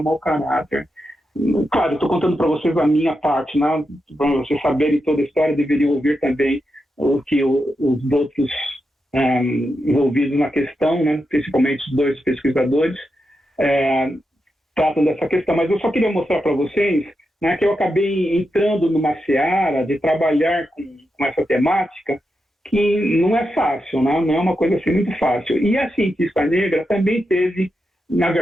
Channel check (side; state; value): both; normal; correlation 0.87